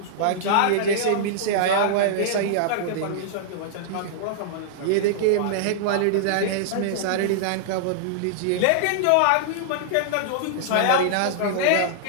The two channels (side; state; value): both; different; correlation -0.01